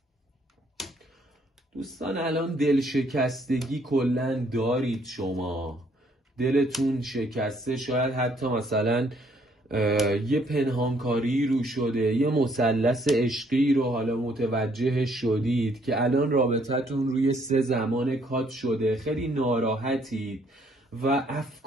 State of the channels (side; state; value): both; normal; correlation 0.66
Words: دوستان الان دل شکستگی کلن دارید، شما دلتون شکسته، شاید حتی مثلا یه پنهانکاری رو شده، یه مثلث عشقی رو حالا متوجه شدید که الان رابطتون روی 3 زمان کات شده، خیلی ناراحتید و